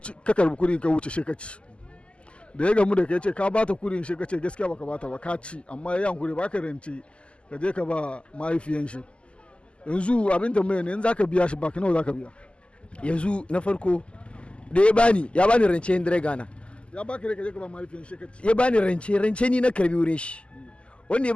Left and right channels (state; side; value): late; right; 0.054 ms